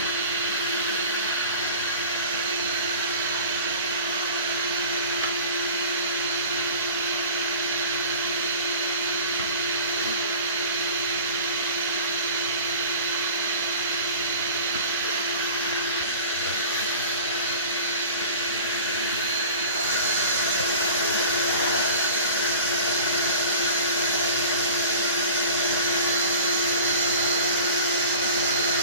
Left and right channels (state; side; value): inverted; both; correlation -0.40